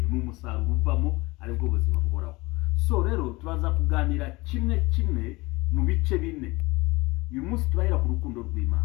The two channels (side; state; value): right; quieter; 22.6 dB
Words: ni umusaruro uvamo aribwo buzima buhoraho. So rero tubaza kuganira kimwe mu bice bine. Uyu munsi turahera ku rukundo